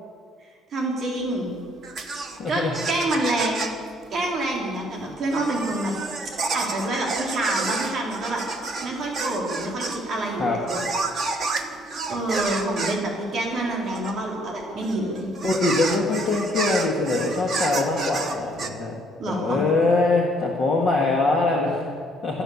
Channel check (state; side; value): normal; both; correlation 0.64